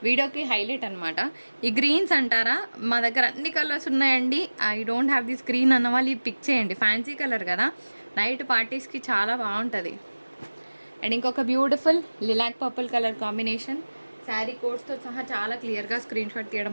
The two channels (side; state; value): both; inverted; correlation -1.00